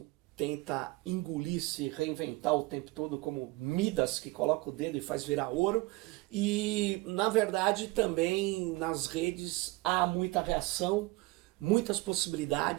tenta engolir, se reinventar o tempo todo, como Midas que coloca o dedo e faz virar ouro. E, na verdade, também nas redes há muita reação, muitas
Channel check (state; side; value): quieter; left; 22.0 dB